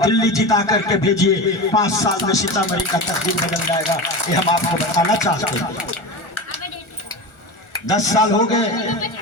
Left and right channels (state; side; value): late; right; 1.4 ms